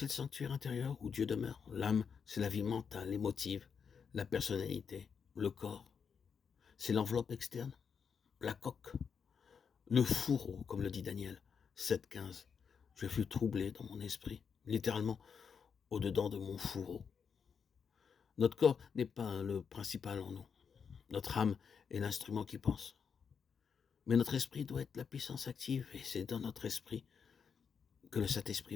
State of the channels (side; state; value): right; quieter; 6.5 dB